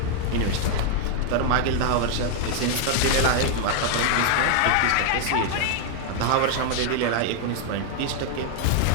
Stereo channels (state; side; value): different; both; correlation 0.00